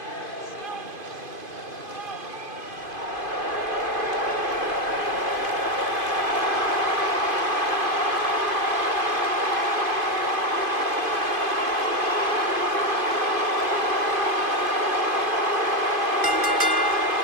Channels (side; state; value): left; late; 2.5 ms